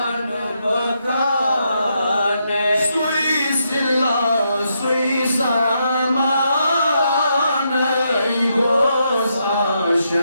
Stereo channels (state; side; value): inverted; both; correlation -0.80